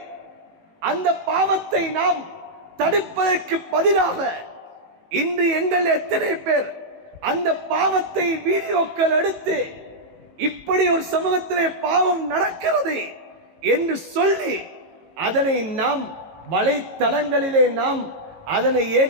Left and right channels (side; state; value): left; late; 18 ms